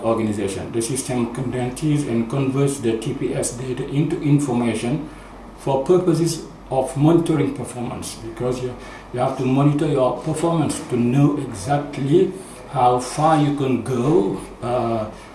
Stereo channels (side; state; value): both; identical; correlation 1.00